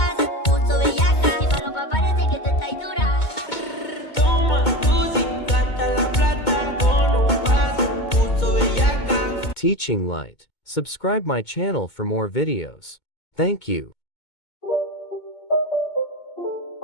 puso bellaca. Mi falopa parece que tú estás dura. Toma tu gasta la plata con un pase, puso bellaca. Teaching Light. Subscribe my channel for more videos. Thank you.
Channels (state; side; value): late; right; 2.2 ms